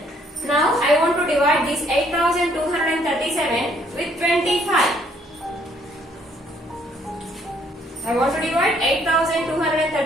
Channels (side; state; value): both; normal; correlation 0.65